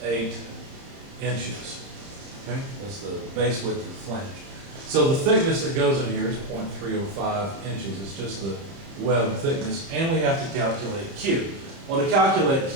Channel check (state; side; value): late; left; 30 ms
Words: 8 inches. Okay, that's the base width of the flange. So the thickness that goes in here is 0.305 inches. It's just the web thickness, and we have to calculate Q. Well, to calculate